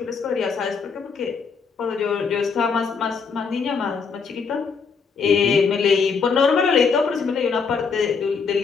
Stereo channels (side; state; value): right; quieter; 5.5 dB